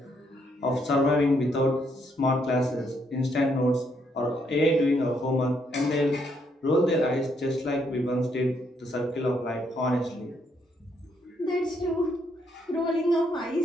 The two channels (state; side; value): normal; both; correlation 0.73